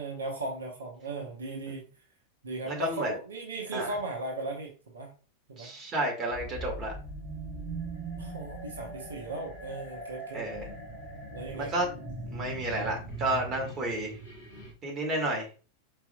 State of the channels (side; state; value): both; normal; correlation 0.11